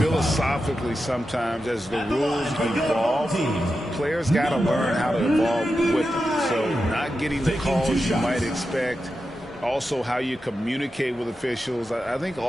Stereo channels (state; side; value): normal; both; correlation 0.90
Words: sometimes as the rules evolve, players got to learn how to evolve with them. So not getting the calls you might expect, also how you communicate with officials. I think